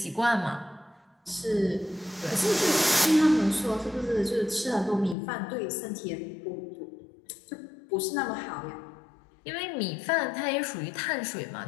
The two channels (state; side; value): drops out; right; at 5.2 s